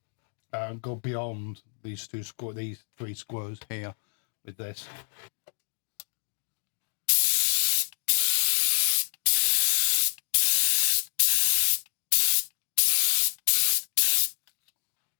go beyond these three squares here with this.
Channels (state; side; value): silent; right; digital silence